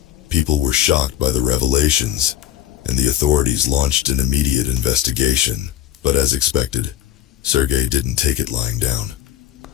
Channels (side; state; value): right; quieter; 12.1 dB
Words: People were shocked by the revelations, and the authorities launched an immediate investigation. But as expected, Sergey didn't take it lying down.